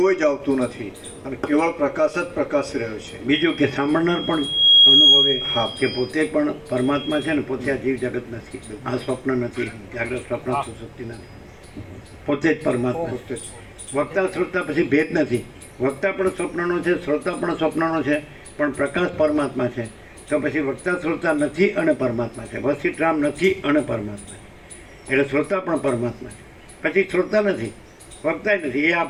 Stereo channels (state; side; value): identical; both; correlation 1.00